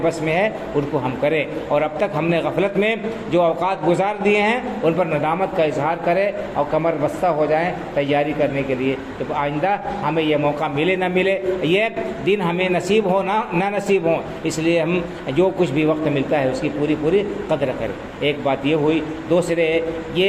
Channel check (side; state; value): both; identical; correlation 1.00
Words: بس میں ہے ان کو ہم کریں، اور اب تک ہم نے غفلت میں جو اوقات گزار دیے ہیں ان پر ندامت کا اظہار کریں اور کمر بستہ ہو جائیں تیاری کرنے کے لیے کہ آئندہ ہمیں یہ موقع ملے نہ ملے، یہ دن ہمیں نصیب ہو نہ نصیب ہو، اس لیے ہم جو کچھ بھی وقت ملتا ہے اس کی پوری قدر کریں۔ ایک بات یہ ہوئی، دوسرے